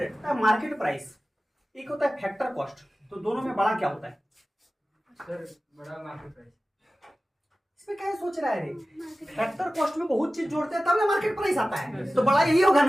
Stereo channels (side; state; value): both; normal; correlation 0.95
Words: मार्केट प्राइस एक होता है फैक्टर कॉस्ट। तो दोनों में बड़ा क्या होता है? सर बड़ा मार्केट प्राइस। इसमें क्या सोच रहा है रे? फैक्टर कॉस्ट में बहुत चीज जोड़ते हैं तब ना मार्केट प्राइस आता है। तो बड़ा यही होगा